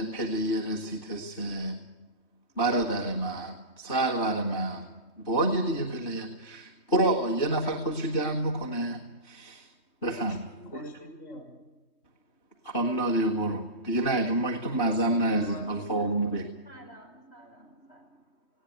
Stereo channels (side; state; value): right; late; 3.2 ms